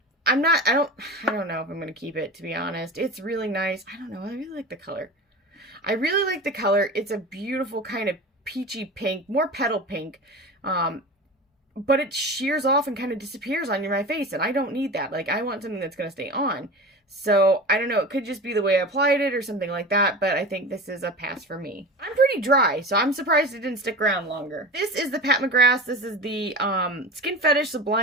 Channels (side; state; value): both; normal; correlation 0.31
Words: I don't know if I'm going to keep it, to be honest. It's really nice. I don't know. I really like the color. It's a beautiful kind of peachy pink, more petal pink. But it shears off and kind of disappears on my face, and I don't need that. Like, I want something that's going to stay on. So, I don't know. It could just be the way I applied it or something like that, but I think this is a pass for me. I'm pretty dry, so I'm surprised it didn't stick around longer. This is the Pat McGrath. This is the Skin Fetish